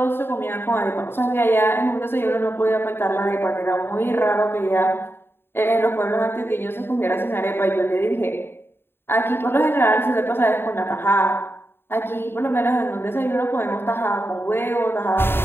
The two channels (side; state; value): right; late; 0.11 ms